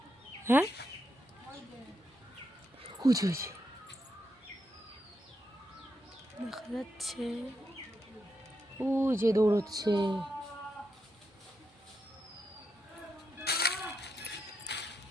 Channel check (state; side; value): normal; both; correlation 0.83